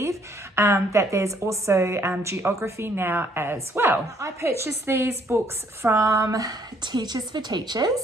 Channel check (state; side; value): normal; both; correlation 0.65